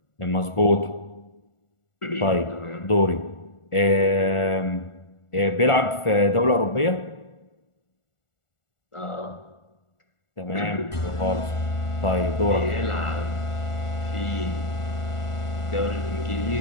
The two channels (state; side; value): late; right; 1.4 ms